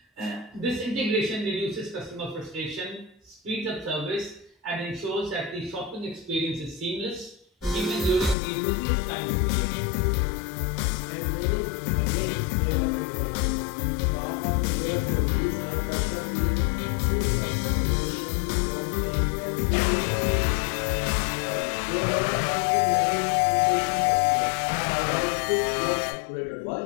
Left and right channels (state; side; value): drops out; right; at 8.3 s